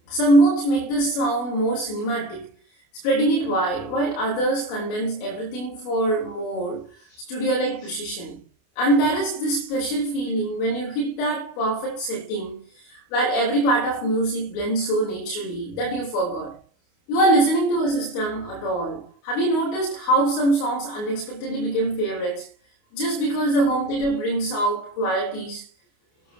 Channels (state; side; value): late; right; 28 ms